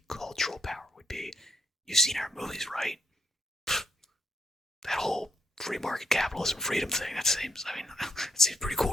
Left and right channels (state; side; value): normal; both; correlation 0.74